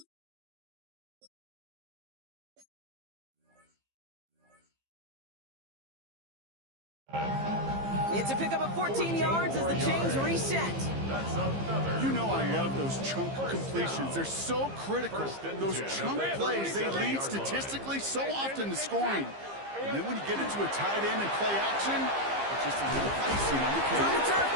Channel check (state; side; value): late; left; 15 ms